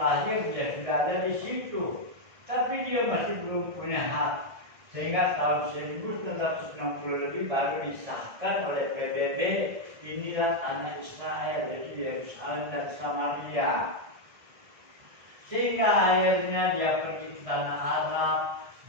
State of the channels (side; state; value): left; late; 1.6 ms